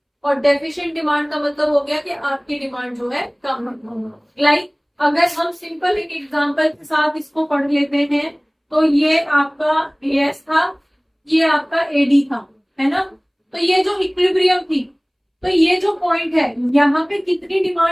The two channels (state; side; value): identical; both; correlation 1.00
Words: और डेफिशिएंट डिमांड का मतलब हो गया कि आपकी डिमांड जो है कम है। लाइक अगर हम सिंपल एक एग्जांपल के साथ इसको पढ़ लेते हैं, तो ये आपका एएस था, ये आपका एडी था, है ना। तो ये जो इक्विलिब्रियम थी, तो ये जो पॉइंट है यहाँ पे कितनी